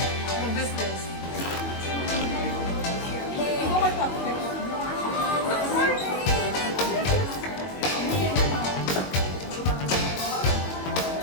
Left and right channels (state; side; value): late; right; 22 ms